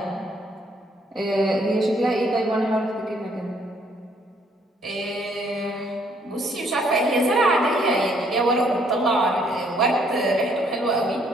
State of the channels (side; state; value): both; normal; correlation 0.66